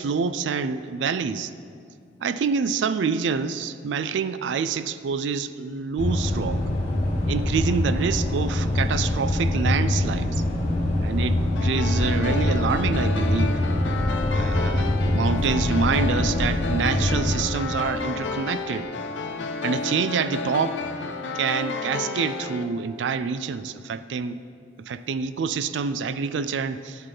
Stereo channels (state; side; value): normal; both; correlation 0.52